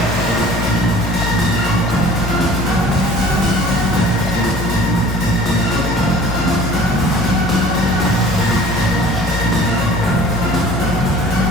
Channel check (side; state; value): both; normal; correlation 0.47